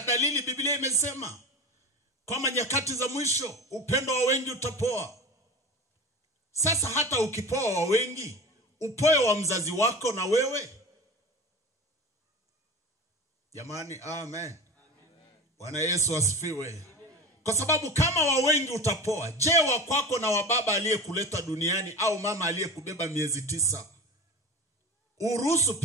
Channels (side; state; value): both; normal; correlation 0.31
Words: Biblia imesema kwamba nyakati za mwisho upendo wa wengi utapoa. Sasa hata ukipoa wa wengi, upoe wa mzazi wako na wewe. Jamani, amen. Bwana Yesu asifiwe. Kwa sababu kama wa wengi utapoa, je, wa kwako na wa baba aliyekuleta duniani au mama aliyekubeba miezi 9 uruhusu